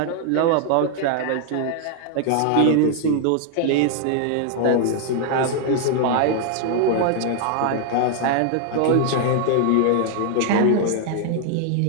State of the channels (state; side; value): different; both; correlation 0.00